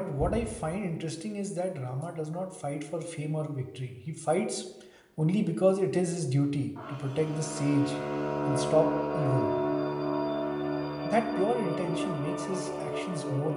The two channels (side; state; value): both; identical; correlation 1.00